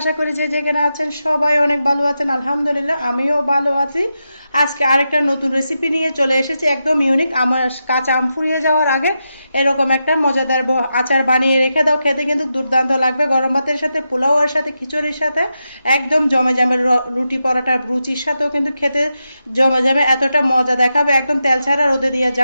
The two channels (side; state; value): both; inverted; correlation -0.87